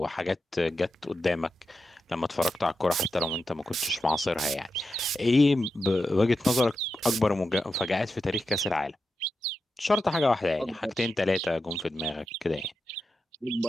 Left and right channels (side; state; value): both; normal; correlation 0.89